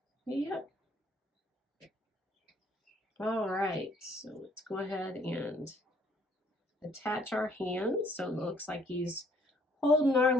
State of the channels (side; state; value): both; normal; correlation 0.62